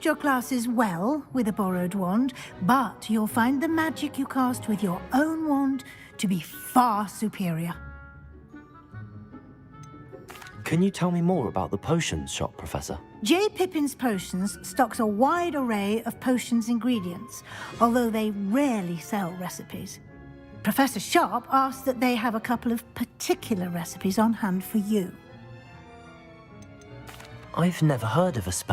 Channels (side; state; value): both; identical; correlation 1.00